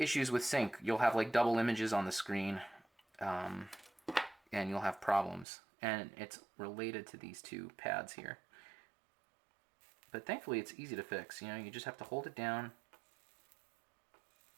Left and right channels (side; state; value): left; drops out; at 5.5 s